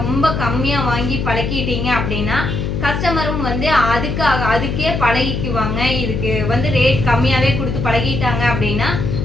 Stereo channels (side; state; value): left; noise; hum, 2 dB below the sound